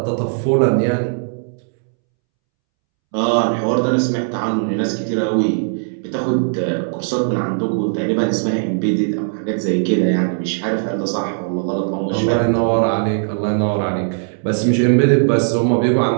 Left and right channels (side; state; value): left; silent; 66 dB below the other